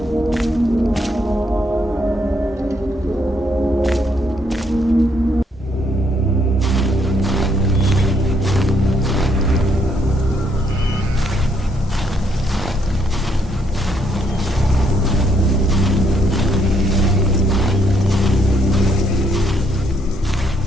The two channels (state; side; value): normal; both; correlation 0.72